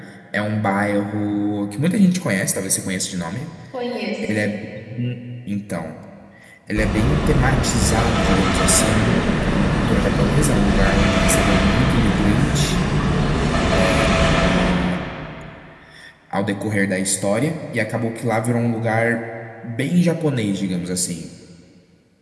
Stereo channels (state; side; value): identical; both; correlation 1.00